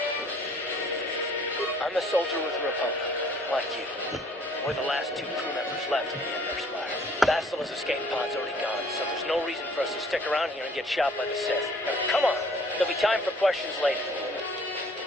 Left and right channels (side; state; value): both; normal; correlation 0.57